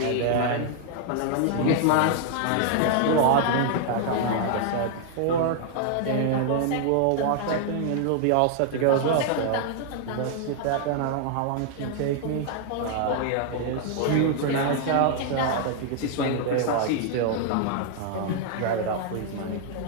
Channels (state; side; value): different; both; correlation 0.00